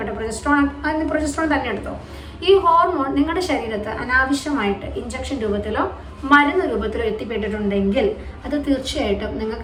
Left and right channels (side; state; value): both; identical; correlation 1.00